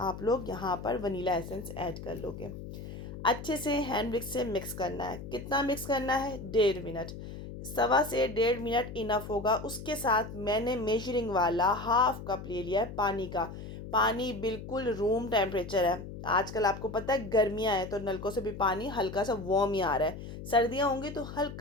लोग यहाँ पर वनीला एसेंस ऐड कर लोगे। अच्छे से हैंड विक्स से मिक्स करना है। कितना मिक्स करना है? 1.5 मिनट, 1.25 से 1.5 मिनट इनफ होगा। उसके साथ मैंने मेजरिंग वाला 1/2 कप ले लिया है पानी का। पानी बिल्कुल रूम टेम्परेचर है। आजकल आपको पता है गर्मियाँ हैं तो नलकों से भी पानी हल्का सा वार्म ही आ रहा है। सर्दियाँ होंगी तो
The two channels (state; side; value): noise; left; hum, 10 dB below the sound